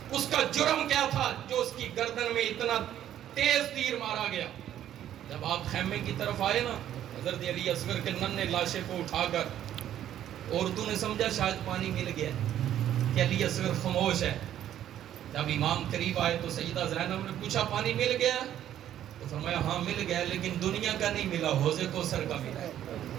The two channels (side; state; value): left; quieter; 11.3 dB